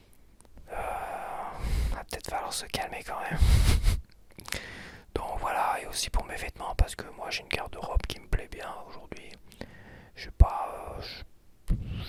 Va peut-être falloir se calmer quand même. Donc voilà, et aussi pour mes vêtements, parce que moi j'ai une garde-robe qui me plaît bien aujourd'hui. J'ai pas,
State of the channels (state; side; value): identical; both; correlation 1.00